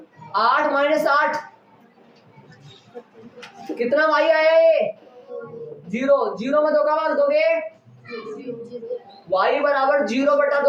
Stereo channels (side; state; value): both; identical; correlation 1.00